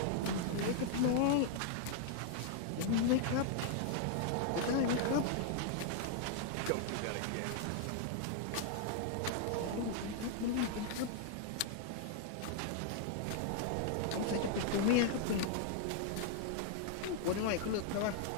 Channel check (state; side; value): different; both; correlation 0.00